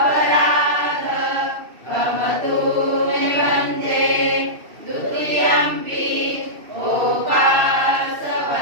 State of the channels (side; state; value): left; late; 2.6 ms